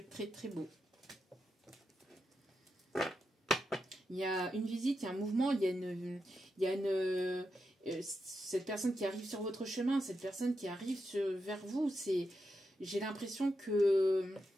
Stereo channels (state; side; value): normal; both; correlation 0.86